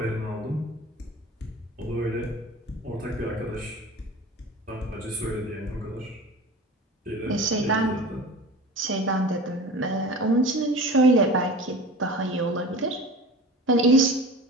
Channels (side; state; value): both; normal; correlation 0.36